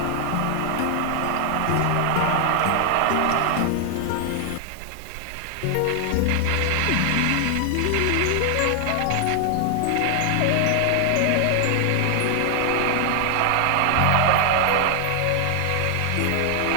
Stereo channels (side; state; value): both; different; correlation 0.00